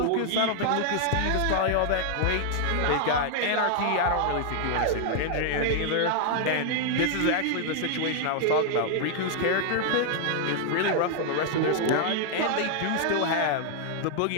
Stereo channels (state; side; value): different; both; correlation 0.00